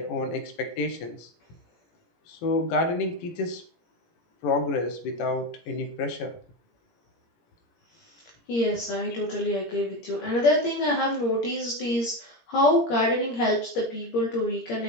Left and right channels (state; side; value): late; right; 17 ms